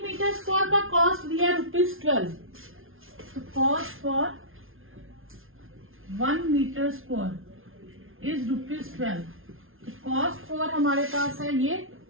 मीटर स्क्वायर का कॉस्ट दिया है ₹12। तो cost for 1 metre square is ₹12। तो कॉस्ट फॉर हमारे पास है ये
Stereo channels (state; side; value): late; left; 0.60 ms